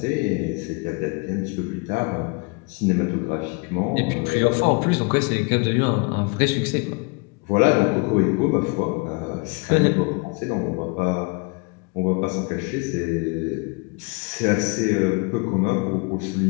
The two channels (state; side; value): quieter; right; 30.3 dB